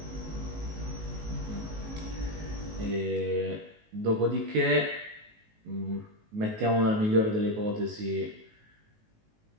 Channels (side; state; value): left; late; 19 ms